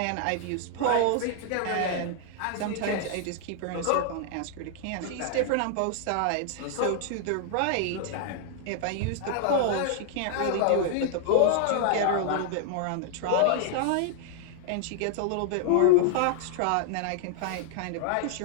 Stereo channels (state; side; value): different; both; correlation -0.01